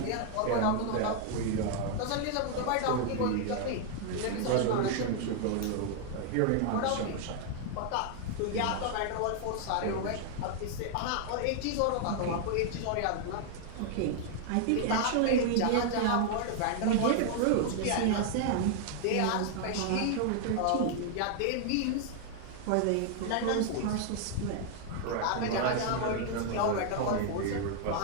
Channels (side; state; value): both; different; correlation 0.00